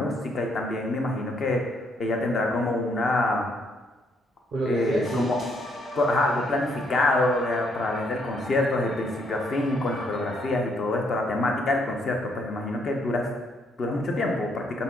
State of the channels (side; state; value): both; normal; correlation 0.71